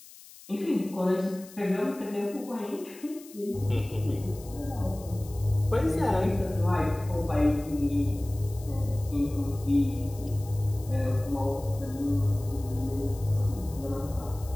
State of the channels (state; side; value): noise; left; hiss, 20 dB below the sound